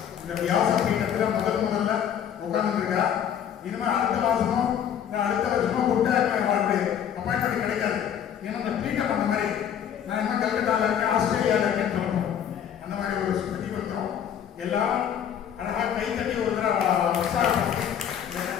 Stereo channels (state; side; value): quieter; right; 9.0 dB